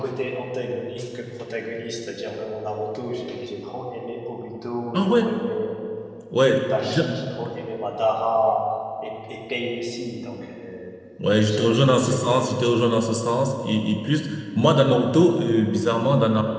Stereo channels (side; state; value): both; identical; correlation 1.00